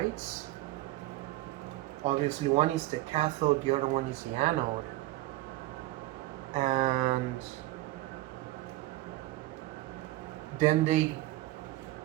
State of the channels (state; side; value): quieter; left; 17.3 dB